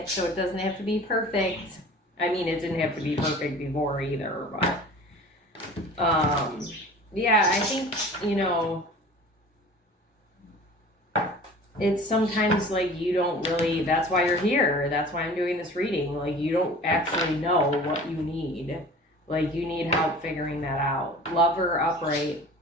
so it doesn't have to be perfect. I mean, it didn't have to be perfect before either, but... yeah, I think, it's sometimes like you don't really, that's why you're here. That's why I'm doing this reading. Like, you don't actually know what you need. Like, you need help figuring that out. Lover upright,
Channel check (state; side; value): normal; both; correlation 0.42